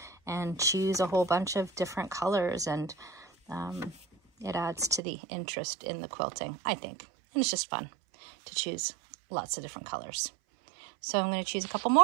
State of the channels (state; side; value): drops out; left; at 5.0 s